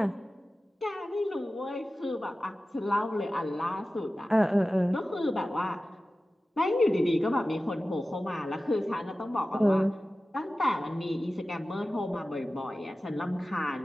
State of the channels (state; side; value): normal; both; correlation 0.95